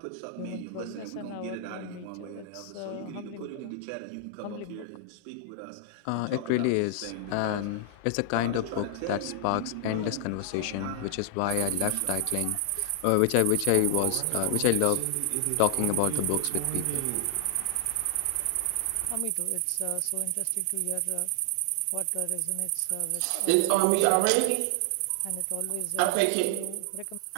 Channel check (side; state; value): both; different; correlation 0.00